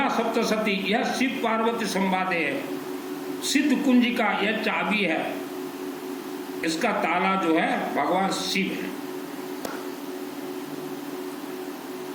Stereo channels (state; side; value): identical; both; correlation 1.00